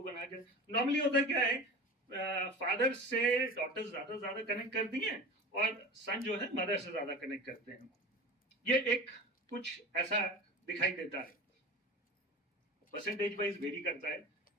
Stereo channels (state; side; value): normal; both; correlation 0.34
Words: बना के, नॉर्मली होता क्या है, फादर से डॉटर ज्यादा कनेक्ट करती हैं और सन जो है मदर से ज्यादा कनेक्ट करते हैं। ये एक कुछ ऐसा दिखाई देता है, परसेंटेज वाइज वेरी करता है,